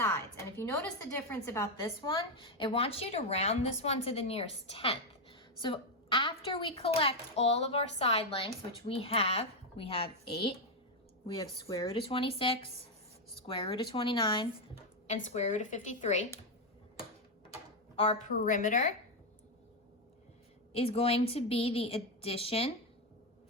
And if you notice the difference about this one, it wants you to round this one to the nearest tenth. So after we collect all of our side lengths, which we have 8, we have square root of 26, square root of 29, and square root of 53. Our perimeter is going to be the addition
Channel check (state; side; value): normal; both; correlation 0.05